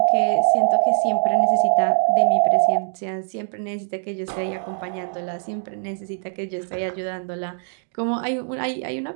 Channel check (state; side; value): silent; left; digital silence